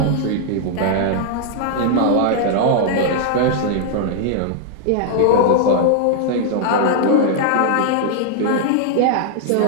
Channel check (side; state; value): both; different; correlation 0.00